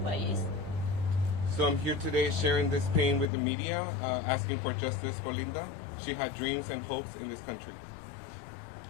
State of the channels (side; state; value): right; drops out; at 3.3 s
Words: So I'm here today sharing this pain with the media, asking for justice for Linda. She had dreams and hopes in this country.